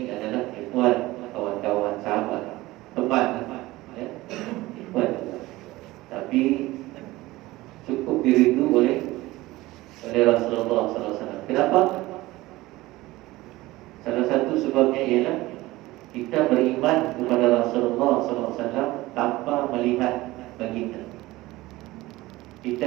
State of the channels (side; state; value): left; quieter; 18.8 dB